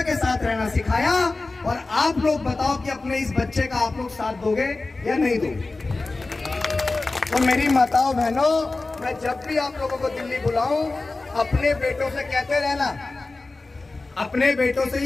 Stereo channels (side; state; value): right; quieter; 3.4 dB